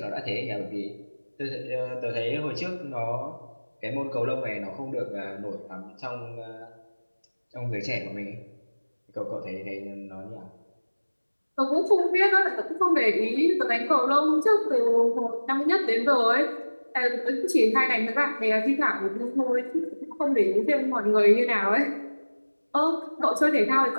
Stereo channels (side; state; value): both; inverted; correlation -1.00